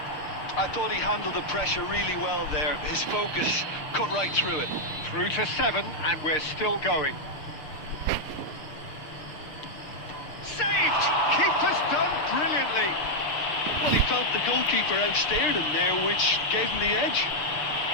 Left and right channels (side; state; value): right; late; 6.5 ms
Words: I thought he handled the pressure really well there. His focus cut right through it. Through to 7 and we're still going. Saved! Keeper's done brilliantly. Well, he felt the goalkeeper outstared him there, which gave him the edge.